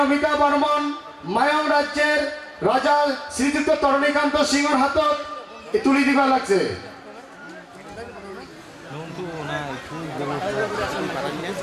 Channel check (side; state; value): both; identical; correlation 1.00